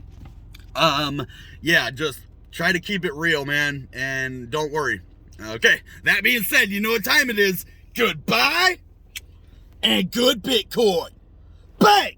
yeah, just try to keep it real, man, and don't worry. Okay, that being said, you know what time it is. Goodbye and good Bitcoin. Bang!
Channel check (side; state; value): both; identical; correlation 1.00